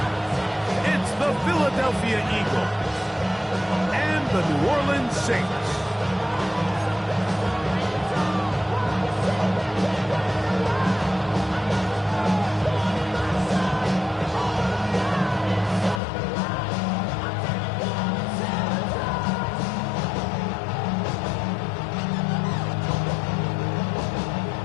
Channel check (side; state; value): right; drops out; at 16.0 s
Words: It's the Philadelphia Eagles and the New Orleans Saints.